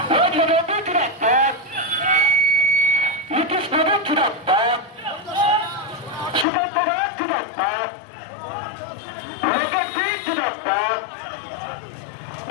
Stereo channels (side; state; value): right; drops out; at 6.5 s